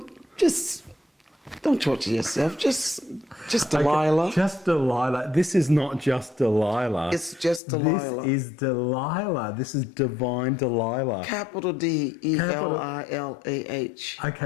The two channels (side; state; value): right; drops out; at 7.6 s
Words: just don't torture yourself. Just Delilah. Okay, just Delilah. This is not just Delilah. It's just Delilah. This is Delilah. This is divine Delilah. Capital Delilah.